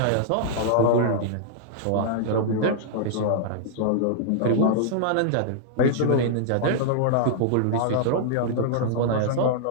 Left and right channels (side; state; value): both; different; correlation -0.01